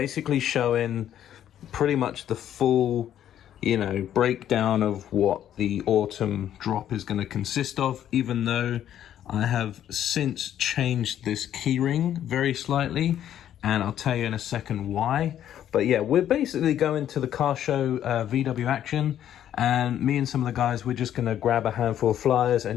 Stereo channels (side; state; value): right; quieter; 10.8 dB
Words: showing pretty much the full, breakdown of what the autumn drop is going to consist of, even though I have since changed this keyring very slightly, and I'll tell you in a second why. But yeah, we're basically going to the car show, VW Action, and me and some of the guys, we're just going to grab a handful of flyers